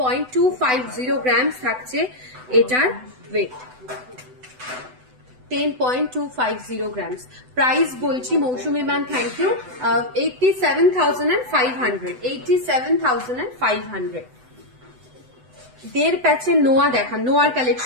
গ্রামস থাকছে এটার ওয়েট, 10.250 গ্রামস। প্রাইস বলছি মৌসুমী ম্যাম, থ্যাংক ইউ, 87,500, 87,500। দেড় প্যাচের নোয়া দেখান, নোয়ার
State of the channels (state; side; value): late; left; 7.9 ms